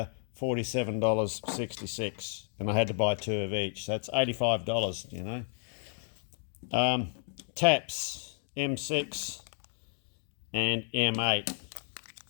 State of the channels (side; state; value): right; silent; digital silence